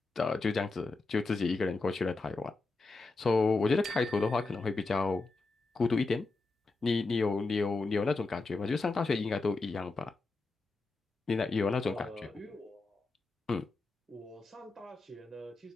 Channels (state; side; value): quieter; right; 3.6 dB